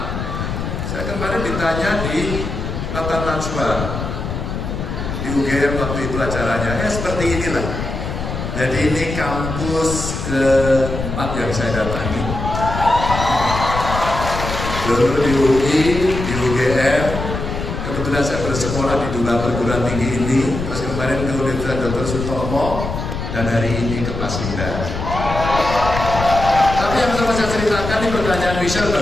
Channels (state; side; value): noise; left; rumble, 5 dB below the sound